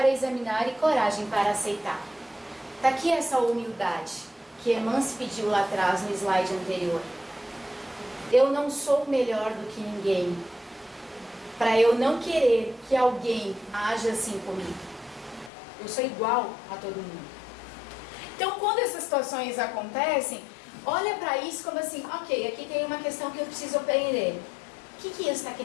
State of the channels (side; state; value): right; drops out; at 15.5 s